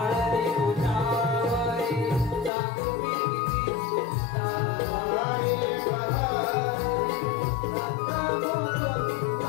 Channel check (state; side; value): drops out; right; at 2.5 s